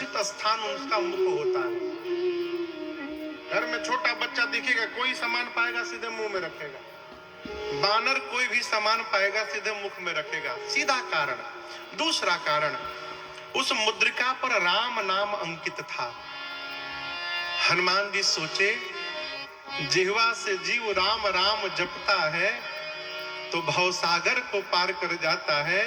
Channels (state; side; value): identical; both; correlation 1.00